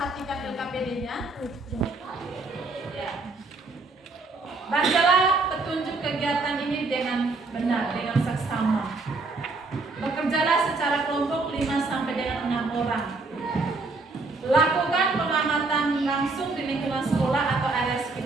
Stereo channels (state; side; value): quieter; left; 3.5 dB